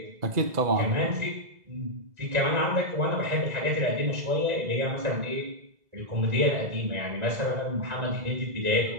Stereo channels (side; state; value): left; late; 2.0 ms